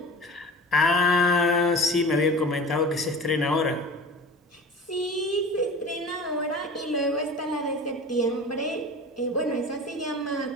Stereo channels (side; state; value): both; normal; correlation 0.36